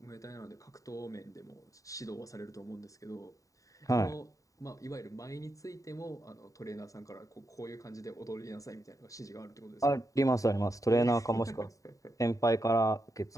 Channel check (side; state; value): right; late; 0.16 ms